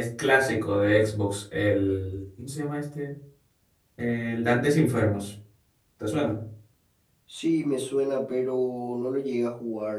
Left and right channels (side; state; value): both; identical; correlation 1.00